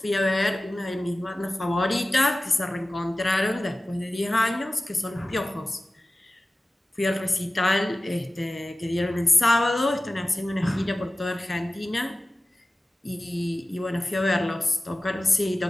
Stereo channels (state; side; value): normal; both; correlation 0.96